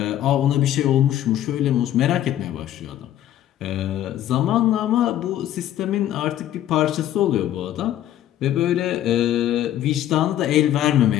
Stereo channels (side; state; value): right; quieter; 12.1 dB